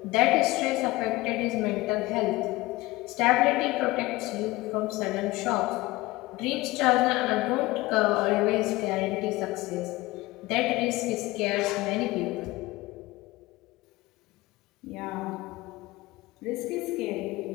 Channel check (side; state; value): right; quieter; 20.2 dB